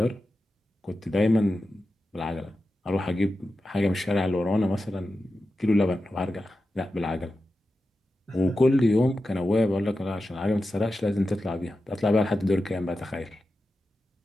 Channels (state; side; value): normal; both; correlation 0.92